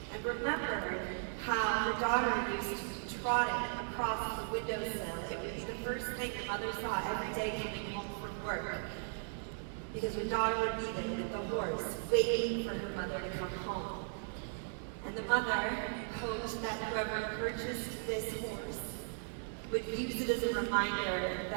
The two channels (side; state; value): left; silent; 53 dB below the other